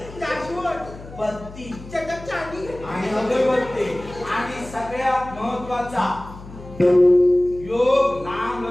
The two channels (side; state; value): left; noise; hum, 16 dB below the sound